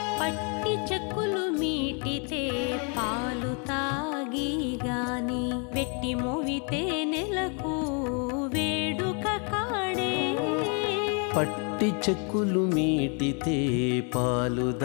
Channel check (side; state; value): right; quieter; 37.3 dB